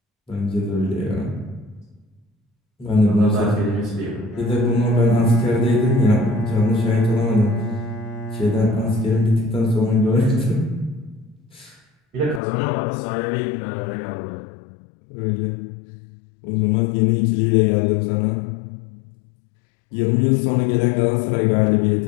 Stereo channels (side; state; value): right; drops out; at 12.4 s